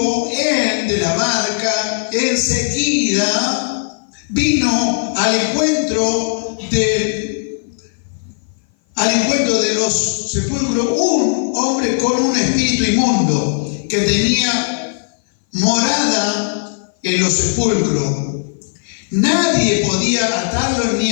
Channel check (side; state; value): right; silent; 58 dB below the other